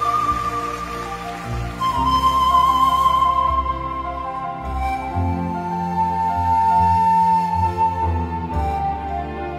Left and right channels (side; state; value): both; identical; correlation 1.00